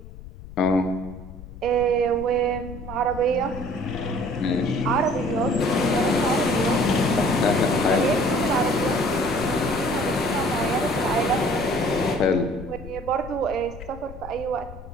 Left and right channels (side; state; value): left; noise; rumble, 14 dB below the sound